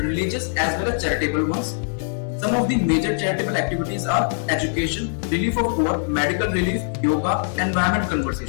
as well as charitable ones. Some of the major charitable activities are education, relief of poor, medical relief, yoga, environment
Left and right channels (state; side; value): silent; right; digital silence